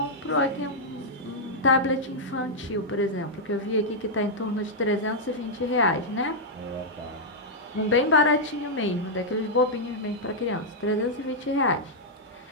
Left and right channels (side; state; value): both; normal; correlation -0.06